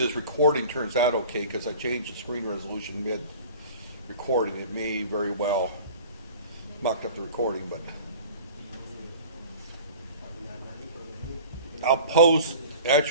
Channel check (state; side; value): inverted; both; correlation -0.42